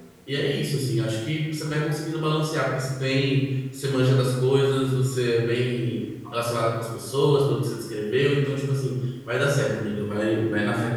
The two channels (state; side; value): identical; both; correlation 1.00